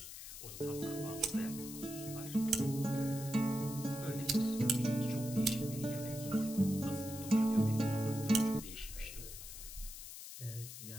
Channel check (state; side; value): noise; left; hiss, 11 dB below the sound